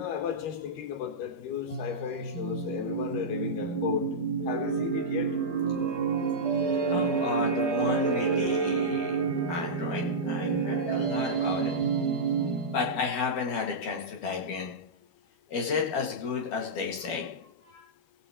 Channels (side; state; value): right; late; 12 ms